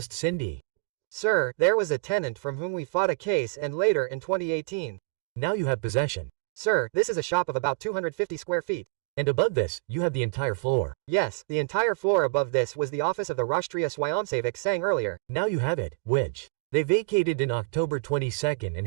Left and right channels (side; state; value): left; quieter; 31.9 dB